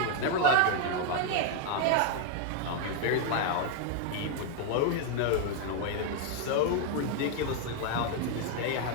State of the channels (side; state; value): both; different; correlation 0.00